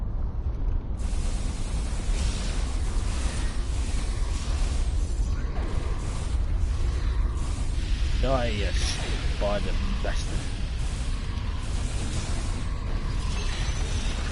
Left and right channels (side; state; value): both; identical; correlation 1.00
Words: Die, yes, by the bastard.